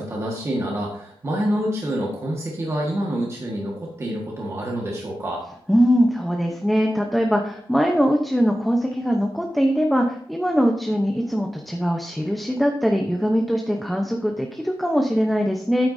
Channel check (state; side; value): normal; both; correlation 0.94